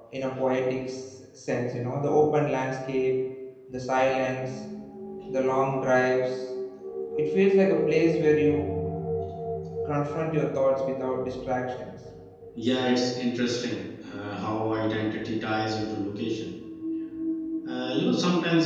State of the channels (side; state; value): both; identical; correlation 1.00